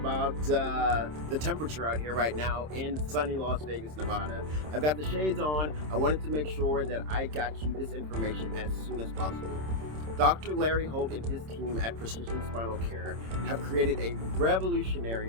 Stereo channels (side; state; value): left; late; 26 ms